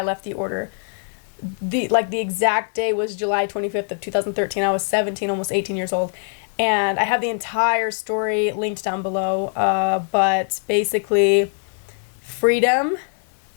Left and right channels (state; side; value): silent; right; 58 dB below the other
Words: left the order. The exact day was July 25th of 2013. I was 17, almost 18 years old. And I have the entire story linked down below. But basically, freedom